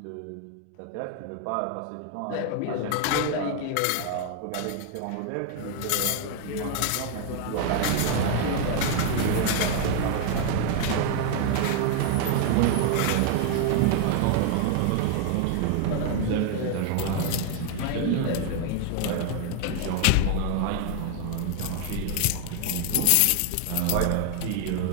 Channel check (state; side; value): different; both; correlation 0.00